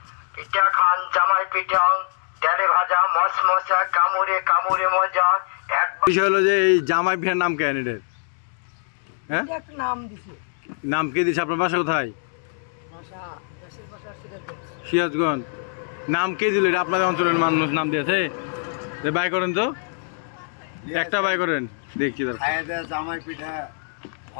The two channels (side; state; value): right; silent; 63 dB below the other